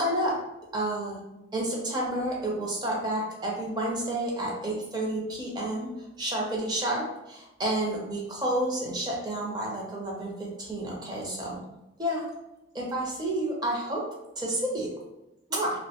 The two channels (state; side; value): normal; both; correlation 0.17